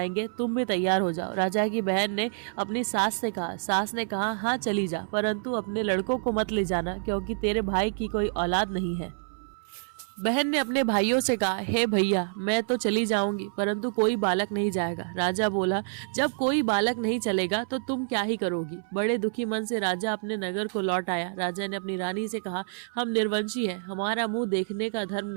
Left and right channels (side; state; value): left; silent; 59 dB below the other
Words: तुम भी तैयार हो जाओ। राजा की बहन ने अपनी सास से कहा। सास ने कहा, हाँ चली जा, परंतु अपने लड़कों को मत ले जाना, क्योंकि तेरे भाई की कोई औलाद नहीं है। बहन ने अपने भाइयों से कहा, हे भैया, मैं तो चली जाऊंगी, परंतु कोई बालक नहीं जाएगा। राजा बोला, जब कोई बालक नहीं चलेगा तो तुम क्या ही करोगी? बड़े दुखी मन से राजा अपने नगर को लौट आया। राजा ने अपनी रानी से कहा, हम निर्वंशी हैं, हमारा मुंह देखने का धर्म